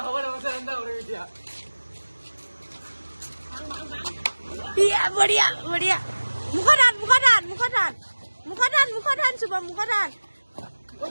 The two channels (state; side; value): inverted; both; correlation -1.00